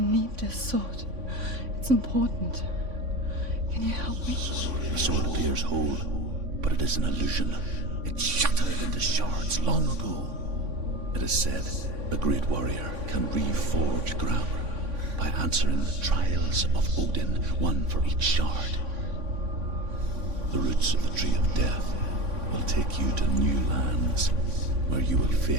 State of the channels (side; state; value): left; late; 3.5 ms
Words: this sword. It's important. Can you help me? The sword appears whole, but it is an illusion. It shattered into shards long ago. It is said a great warrior can reforge Gramr by answering the trials of Odin, one for each shard. The roots of the tree of death will take you to new lands where you will